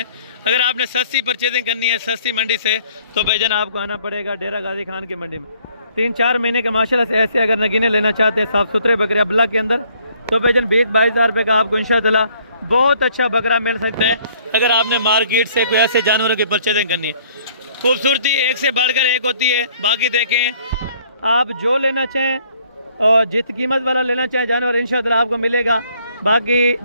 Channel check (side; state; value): both; inverted; correlation -0.62